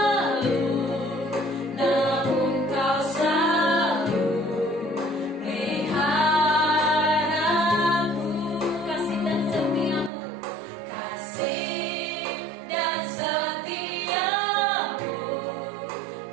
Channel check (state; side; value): drops out; left; at 10.1 s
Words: namun kau selalu pelihara aku. Kasih dan setiamu, Kasih dan setiamu